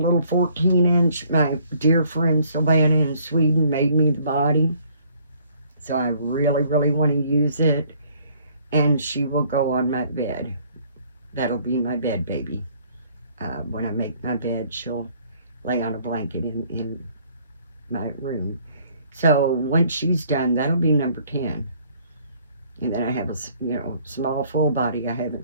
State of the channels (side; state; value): both; inverted; correlation -0.61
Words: 14-inch. My dear friend Savannah in Sweden made me the body, so I really, really want to use it, and she will go on my bed. That'll be my bed baby. When I make my bed, she'll lay on a blanket in my room. So once she's done, that'll be number 10. And then I have a small full body I